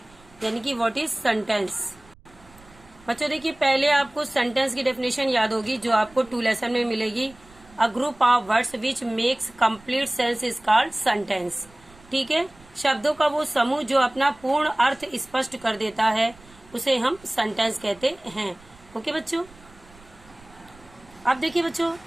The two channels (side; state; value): right; noise; rumble, 25 dB below the sound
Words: यानी कि व्हाट इज सेंटेंस। बच्चों देखिए, पहले आपको सेंटेंस की डेफिनेशन याद होगी जो आपको 2 लेसन में मिलेगी। A group of words which makes complete sense is called sentence. ठीक है, शब्दों का वो समूह जो अपना पूर्ण अर्थ स्पष्ट कर देता है उसे हम सेंटेंस कहते हैं। ओके बच्चों, अब देखिए बच्चों,